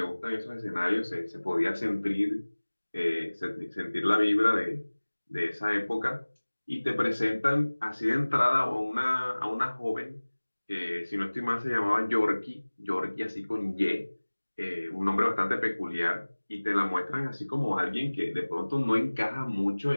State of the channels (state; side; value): inverted; both; correlation -1.00